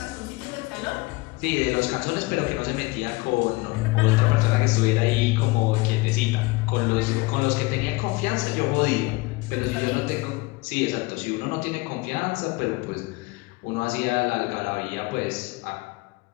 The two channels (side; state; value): right; quieter; 23.3 dB